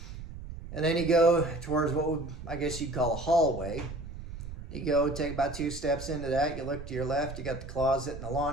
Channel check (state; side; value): noise; right; rumble, 11 dB below the sound